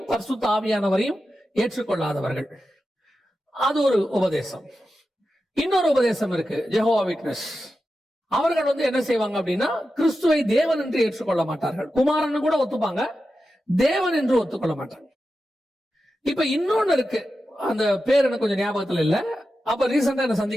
பரிசுத்த ஆவியானவரையும் ஏற்றுக்கொள்ளாதவர்கள், அது ஒரு உபதேசம். இன்னொரு உபதேசம் இருக்கு, ஜெகோவா விட்னஸ். அவர்கள் என்ன செய்வாங்க அப்படின்னா, கிறிஸ்துவை தேவன் என்று ஏற்றுக்கொள்ள மாட்டார்கள், குமாரன் கூட ஒத்துப்பாங்க, தேவன் என்று ஒத்துக்கொள்ள மாட்டாங்க. இப்ப இன்னொன்னு இருக்கு, அந்த பேர் எனக்கு கொஞ்சம் ஞாபகத்துல இல்ல, அப்ப ரீசெண்டா என்ன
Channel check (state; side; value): normal; both; correlation 0.91